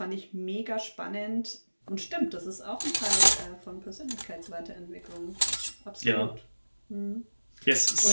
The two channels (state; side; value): inverted; both; correlation -1.00